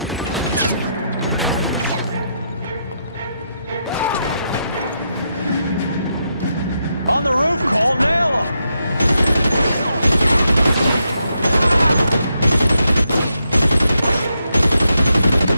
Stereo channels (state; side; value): inverted; both; correlation -0.82